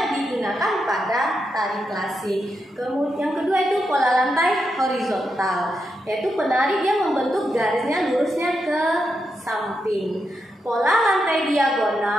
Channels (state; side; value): normal; both; correlation 0.85